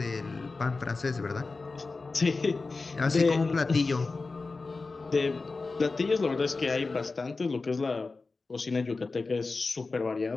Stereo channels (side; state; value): right; quieter; 3.9 dB